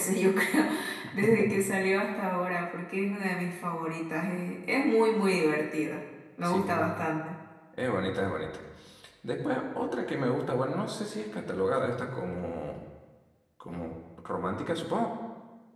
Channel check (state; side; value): identical; both; correlation 1.00